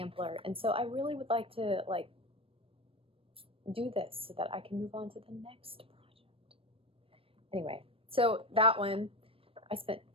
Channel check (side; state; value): left; late; 0.27 ms